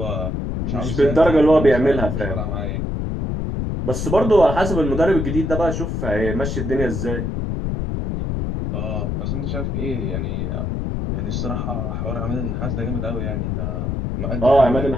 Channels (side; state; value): left; noise; rumble, 2 dB below the sound